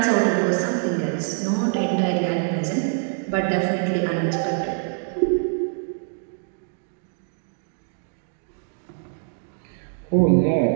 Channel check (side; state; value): left; silent; 62 dB below the other